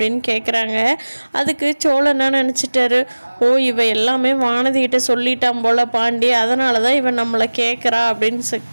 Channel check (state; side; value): inverted; both; correlation -1.00